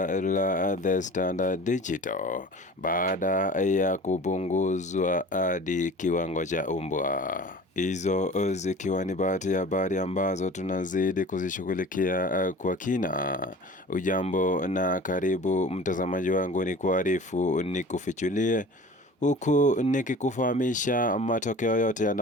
la The Standard Digital baada ya kupunguzwa hadi kiwango cha umbwa. Hizo zikiwa ni baadhi ya habari ambazo tunazidi kuzishughulikia kwa kina. Ujambo na karibu mtazamaji wangu, ni kuarifu ni kufichulie huku nikikufahamisha matokeo yote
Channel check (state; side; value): normal; both; correlation 0.41